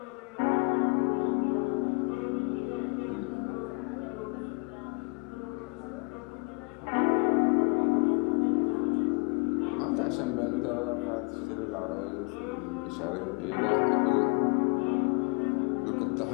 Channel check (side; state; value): right; quieter; 32.2 dB